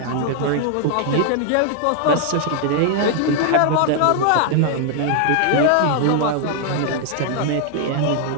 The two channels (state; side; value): different; both; correlation 0.00